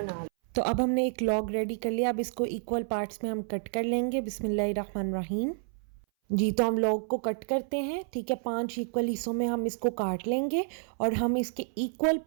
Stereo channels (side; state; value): left; silent; 58 dB below the other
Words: लें। तो अब हमने एक लॉग रेडी कर लिया। अब इसको इक्वल पार्ट्स में हम कट कर लेंगे। बिस्मिल्लाहिर्रहमानिर्रहीम। जी, तो हम लॉग को कट करते हैं। ठीक है, 5 इक्वल हिस्सों में हम इसको काट लेंगे और हम इसके इक्वल